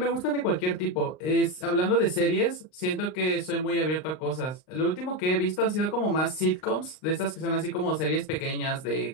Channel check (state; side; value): late; right; 39 ms